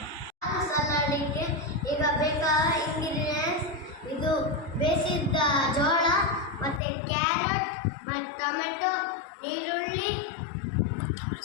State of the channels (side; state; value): right; drops out; at 6.8 s